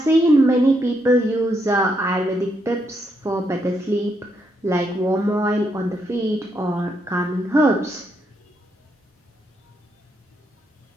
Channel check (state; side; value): normal; both; correlation 0.78